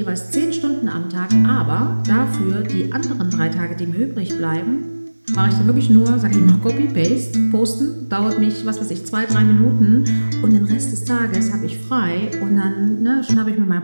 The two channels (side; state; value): both; inverted; correlation -1.00